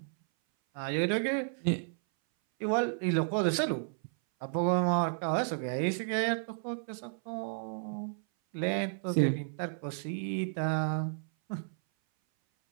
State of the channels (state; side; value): silent; left; 56 dB below the other